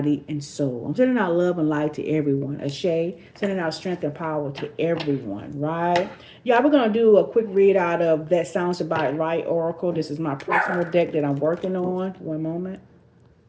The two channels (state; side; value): identical; both; correlation 1.00